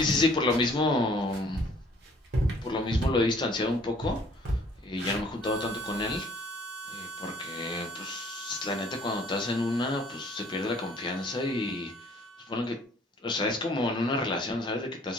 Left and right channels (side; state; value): both; normal; correlation 0.57